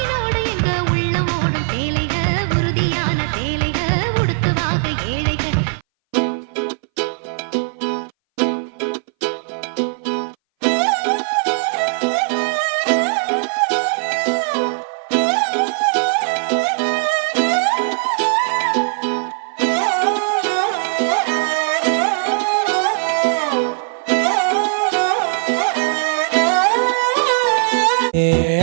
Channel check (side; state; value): left; silent; 61 dB below the other